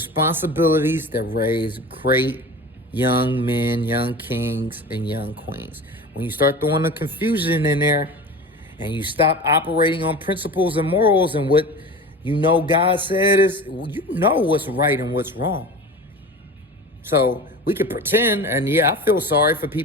that raise great young men, young kings, and young queens. When you start throwing the confusion in there and you stop operating on principles and morals and what You know God said is, you know what's right and what's wrong. So we could pretend, and yeah, I feel sorry for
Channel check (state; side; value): normal; both; correlation 0.34